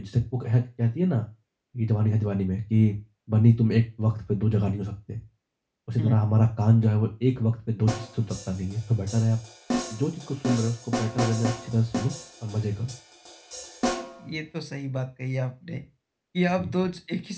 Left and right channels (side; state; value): both; identical; correlation 1.00